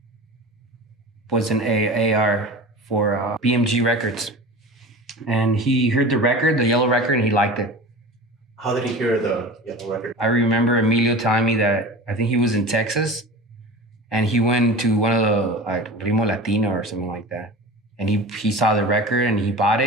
was an AR for BMG Records, and he heard the record, the Yellow record, and he liked it. How did he hear the Yellow record? I remember Emilio telling me that I think he was in Texas, and he went to one of the Rimo Latino or something like that, and he saw the record and he bought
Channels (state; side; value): normal; both; correlation 0.34